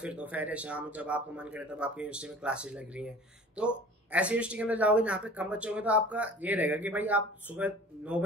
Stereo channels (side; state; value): both; normal; correlation 0.44